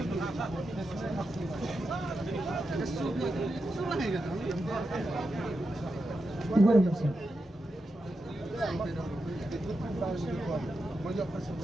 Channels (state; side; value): normal; both; correlation 0.88